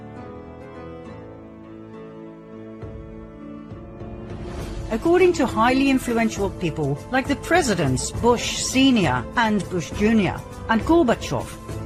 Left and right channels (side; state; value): both; identical; correlation 1.00